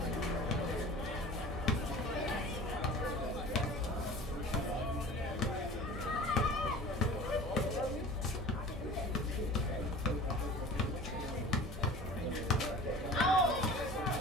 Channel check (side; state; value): both; normal; correlation 0.40